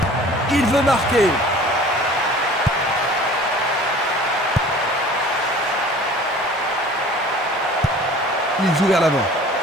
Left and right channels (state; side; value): normal; both; correlation 0.46